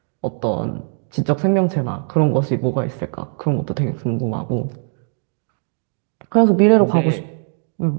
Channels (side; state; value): left; silent; digital silence